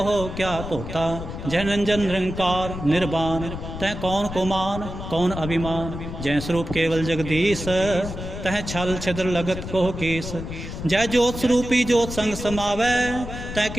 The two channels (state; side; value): noise; left; rumble, 8 dB below the sound